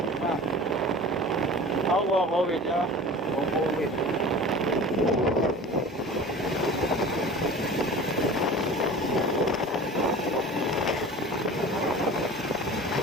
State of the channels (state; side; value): normal; both; correlation 0.38